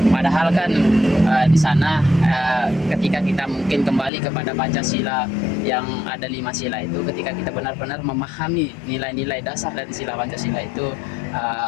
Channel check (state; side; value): drops out; right; at 4.1 s